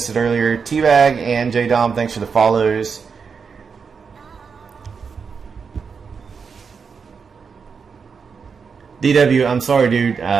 it earlier. T-Bag and J-Dom, thanks for the follows. DW, I'm sorry, dude.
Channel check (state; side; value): quieter; left; 5.8 dB